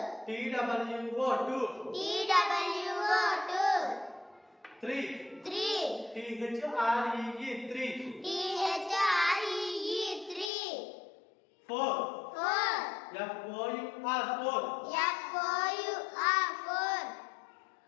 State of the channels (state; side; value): drops out; right; at 10.5 s